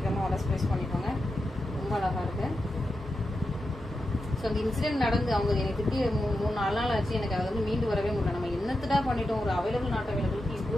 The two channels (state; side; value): normal; both; correlation 0.89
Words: ஆர்டர் பிளேஸ் பண்ணிக்கோங்க. ரொம்ப அழகா இருக்கு. ஸோ அந்த இன்சிடென்ட் நடந்து அவங்க எனக்கு திட்டி 3-4 நாள் ஆச்சு. எனக்கு அதை வந்து மீண்டு வரவே முடியல. நம்ம என்னத்துடா பண்ணிட்டோம், ஒரு அவைலபிள் நாட் அவைலபிளுக்கு